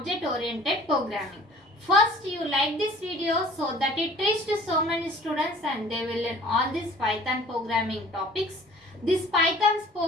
programming. First, you like this video so that it reached so many students and they will learn all these Python programming topics. This Python's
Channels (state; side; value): normal; both; correlation 0.50